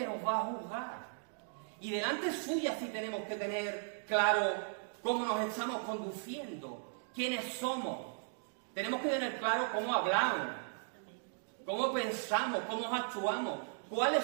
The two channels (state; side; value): silent; left; digital silence